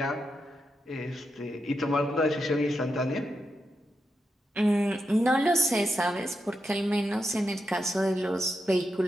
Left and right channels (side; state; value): both; normal; correlation 0.86